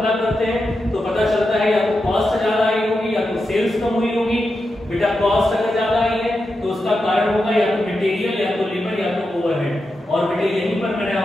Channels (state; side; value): normal; both; correlation 0.88